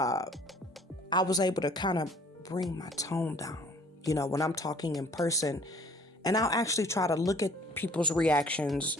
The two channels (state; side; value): normal; both; correlation 0.55